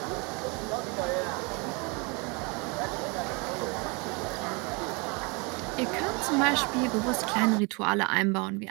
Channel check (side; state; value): left; quieter; 30.2 dB